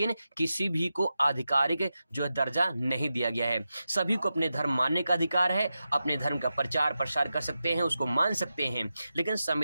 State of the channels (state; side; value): inverted; both; correlation -0.91